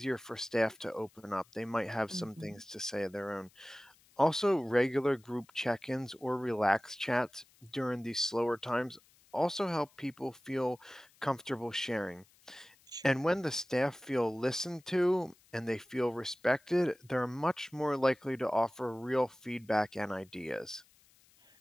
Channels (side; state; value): left; noise; hiss, 30 dB below the sound